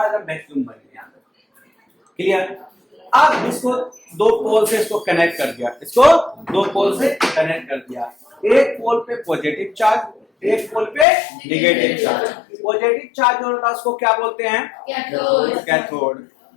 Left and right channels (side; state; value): right; drops out; at 11.1 s